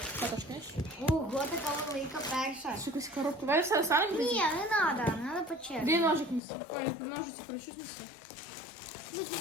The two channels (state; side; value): drops out; right; at 6.4 s